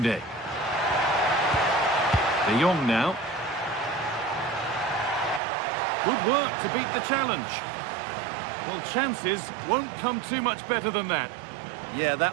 De Jong now. Good work to beat the challenge. Well, chances won't come too much better than that. Yeah,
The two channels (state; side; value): drops out; left; at 5.4 s